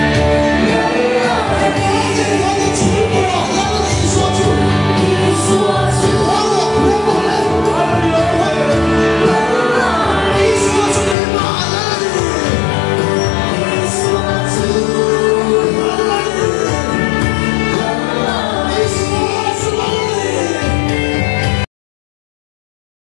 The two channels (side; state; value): right; drops out; at 11.2 s